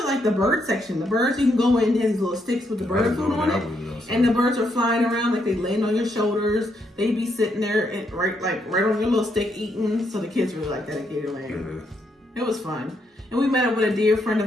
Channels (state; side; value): normal; both; correlation 0.77